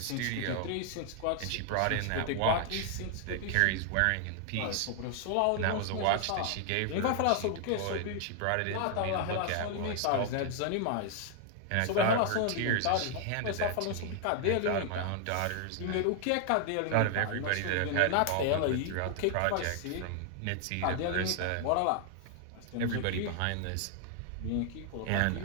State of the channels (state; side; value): different; both; correlation 0.00